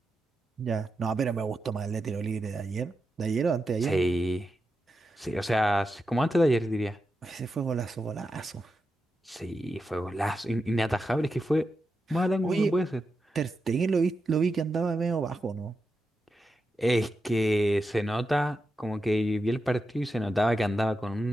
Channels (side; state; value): both; normal; correlation 0.88